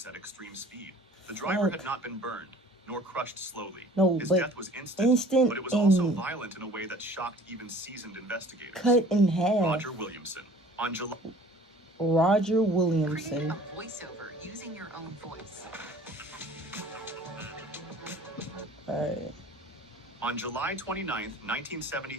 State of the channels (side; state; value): both; normal; correlation 0.49